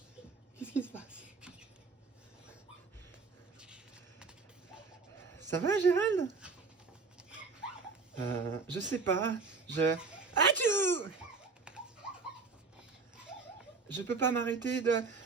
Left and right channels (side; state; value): left; quieter; 4.5 dB